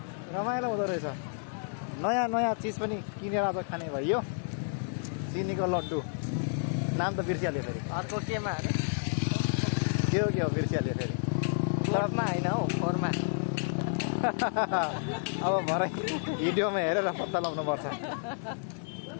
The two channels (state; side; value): silent; right; digital silence